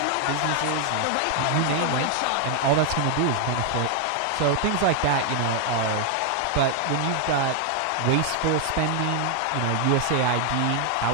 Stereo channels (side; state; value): both; different; correlation 0.00